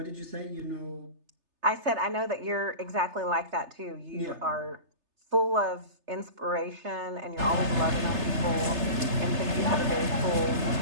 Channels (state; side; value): late; left; 3.3 ms